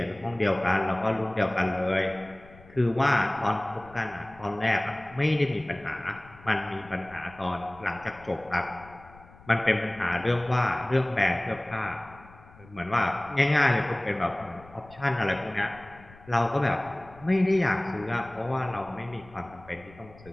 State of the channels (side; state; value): left; noise; rumble, 23 dB below the sound